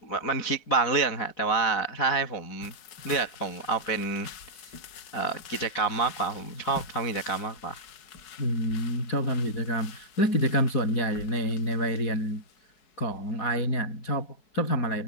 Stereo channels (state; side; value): late; right; 4.7 ms